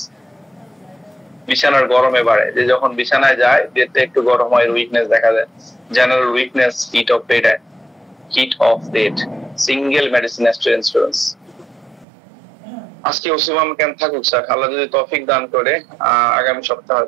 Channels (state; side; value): drops out; left; at 12.1 s